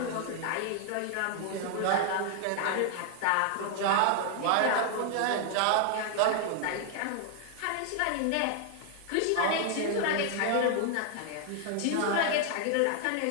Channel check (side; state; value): both; different; correlation 0.00